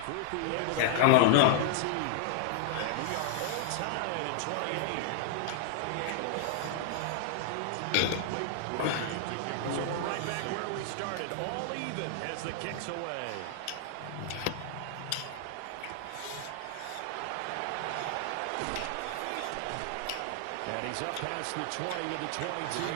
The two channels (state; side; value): different; both; correlation -0.01